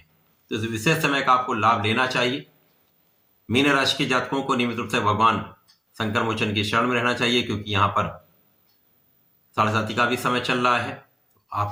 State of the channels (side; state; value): both; identical; correlation 1.00